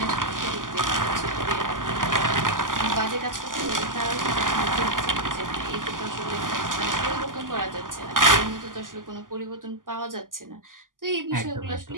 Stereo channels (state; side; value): late; left; 0.89 ms